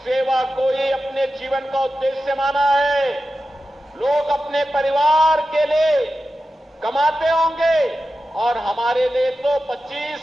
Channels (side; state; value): both; normal; correlation 0.92